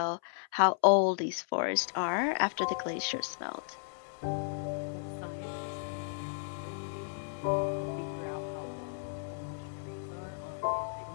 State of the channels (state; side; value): silent; right; 55 dB below the other